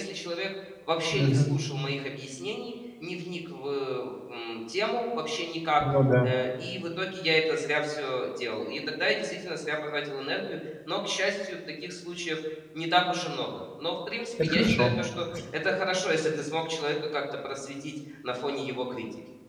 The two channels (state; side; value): identical; both; correlation 1.00